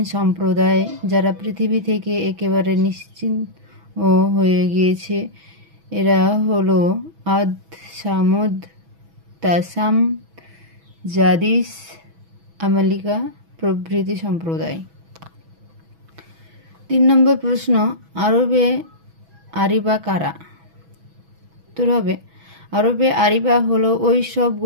সম্প্রদায় যারা পৃথিবী থেকে একেবারে নিশ্চিহ্ন হয়ে গিয়েছে। এরা হলো আদ, সামুদ, তাসাম, জাদিস, আমালিকা প্রভৃতি সম্প্রদায়। 3 নম্বর প্রশ্ন, আরবে আরিবা কারা? উত্তর হবে, আরবে আরিবা হলো ওই সব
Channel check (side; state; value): left; late; 6.1 ms